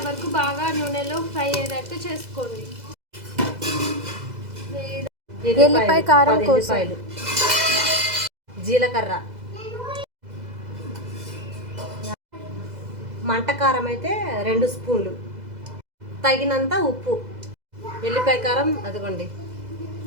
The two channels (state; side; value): late; left; 2.0 ms